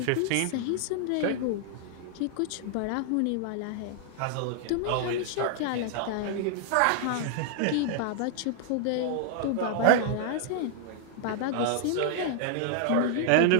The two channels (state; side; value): different; both; correlation -0.01